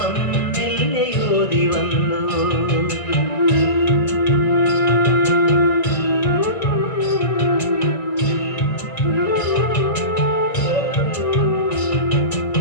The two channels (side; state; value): right; late; 1.8 ms